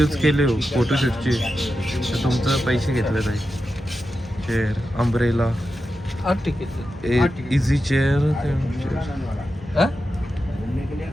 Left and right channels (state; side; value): normal; both; correlation 0.90